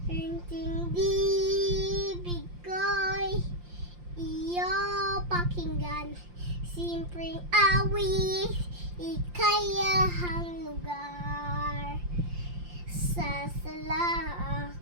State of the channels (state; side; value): late; left; 5.7 ms